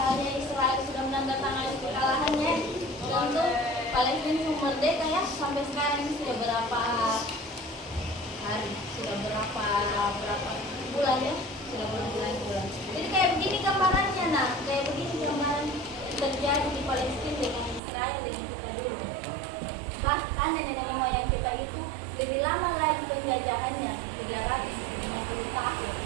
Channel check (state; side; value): drops out; left; at 17.8 s